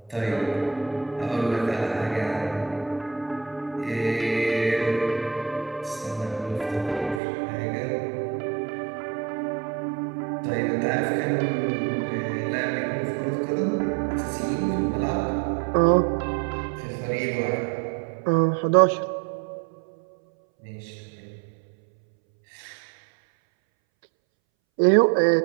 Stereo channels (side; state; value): left; drops out; at 7.2 s